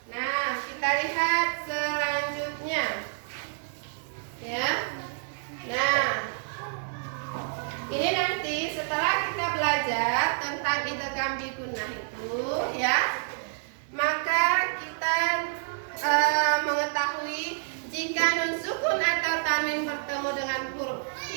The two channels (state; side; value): silent; left; digital silence